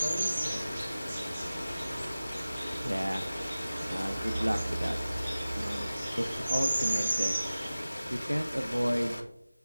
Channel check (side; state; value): both; inverted; correlation -0.97